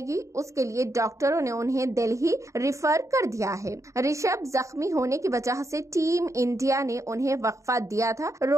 उसके लिए डॉक्टरों ने उन्हें दिल्ली रिफर कर दिया है। ऋषभ जख्मी होने की वजह से टीम इंडिया ने उन्हें वक्फा दिया था।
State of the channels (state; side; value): late; left; 0.15 ms